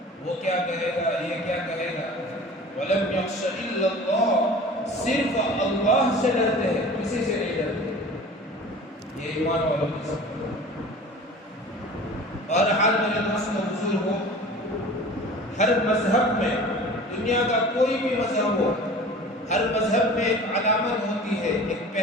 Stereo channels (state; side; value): normal; both; correlation 0.41